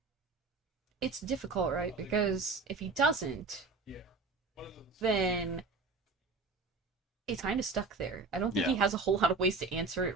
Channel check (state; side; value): quieter; left; 4.1 dB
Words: it's difficult, right? Because if he doesn't, then it's kind of stuck there. I don't think he Yeah. has a whole lot of ways to answer